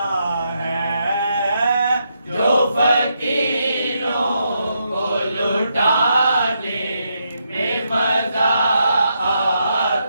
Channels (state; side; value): inverted; both; correlation -0.80